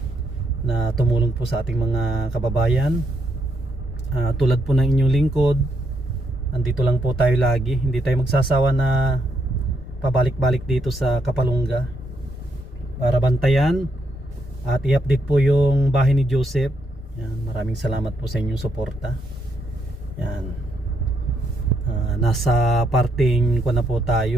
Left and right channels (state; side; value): normal; both; correlation 0.77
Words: na tumulong po sa ating mga kababayan. Tulad po ng inyong lingkod, andito lang po tayo lagi. Hindi tayo magsasawa na pabalik-balik dito sa Kapalungga para bantayan at i-update po yung bahay ni Joseph. Yan, maraming salamat po sa inyong suporta. Yan. Nasa parting ko na po